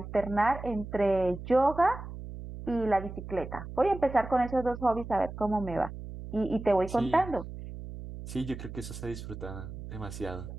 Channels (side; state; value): right; noise; hum, 10 dB below the sound